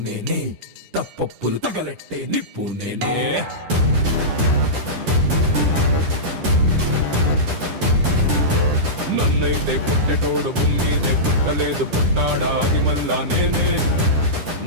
నేనే, తప్పప్పులు తగలెట్టే నిప్పు నేనే. నన్నైతే పుట్టెటోడు భూమిదే పుట్టలేదు, పుట్టాడా అది మళ్ళా నేనే.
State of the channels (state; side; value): late; left; 10 ms